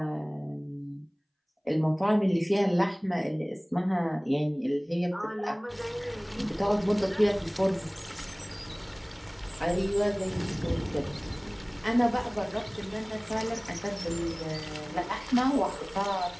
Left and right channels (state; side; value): identical; both; correlation 1.00